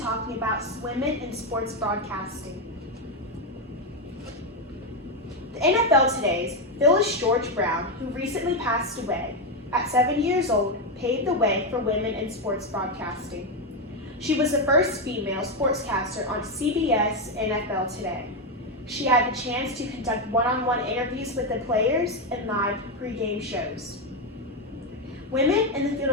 about women in sports broadcasting. The NFL Today's Phyllis George Brown, who recently passed away at 7 years old, paved the way for women in sports broadcasting. She was the first female sportscaster on CBS NFL Today. She had the chance to conduct one-on-one interviews with the players and live pregame shows. Women in the field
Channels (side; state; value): both; normal; correlation 0.07